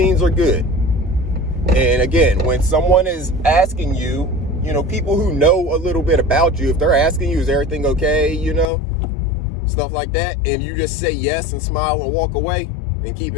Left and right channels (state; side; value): drops out; right; at 8.7 s